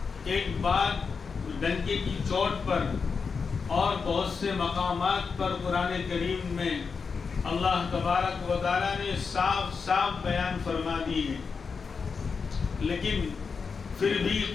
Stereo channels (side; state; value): right; quieter; 5.3 dB